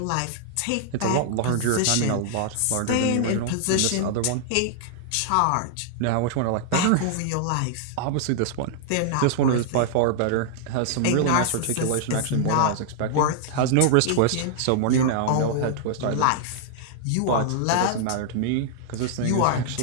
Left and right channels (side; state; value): both; different; correlation -0.01